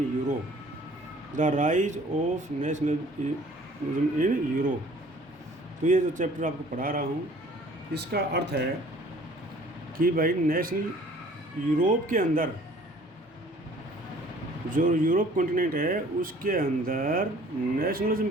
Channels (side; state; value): both; normal; correlation 0.53